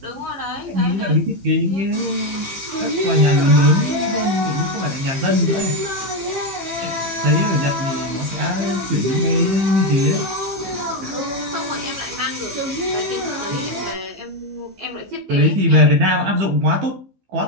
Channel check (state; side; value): late; left; 15 ms